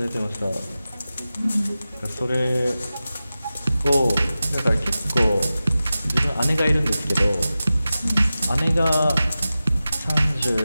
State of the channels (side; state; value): both; inverted; correlation -0.94